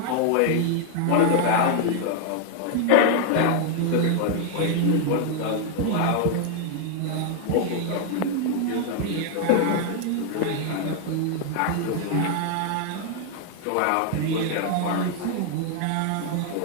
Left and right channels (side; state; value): both; different; correlation 0.00